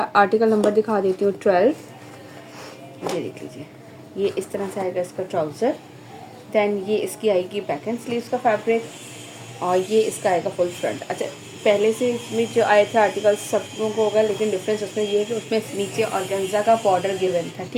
आर्टिकल नंबर दिखा देती हूँ 12। ये देख लीजिए, ये इस तरह से आएगा इसका ट्राउज़र। दैन ये इसकी आएगी बैक एंड स्लीव्स का फैब्रिक, और ये इसका आएगा फुल फ्रंट। अच्छा, पहले से इसमें जो आए थे आर्टिकल सब लोगों को होगा, लेकिन डिफरेंस उसमें ये है कि उसमें नीचे ऑर्गेन्जा का बॉर्डर गिवन था।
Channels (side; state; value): both; identical; correlation 1.00